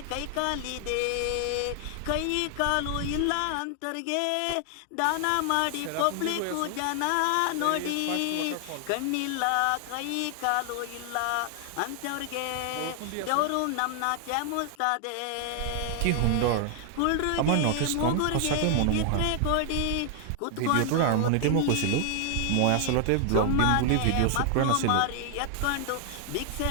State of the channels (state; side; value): different; both; correlation 0.00